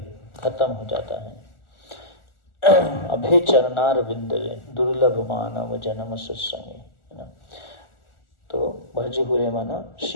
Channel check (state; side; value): late; right; 1.4 ms